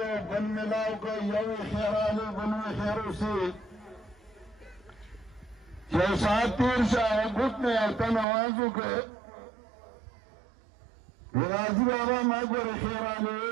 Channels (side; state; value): left; drops out; at 8.2 s